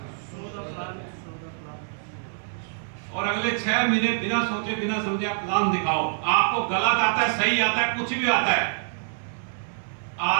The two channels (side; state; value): left; silent; 61 dB below the other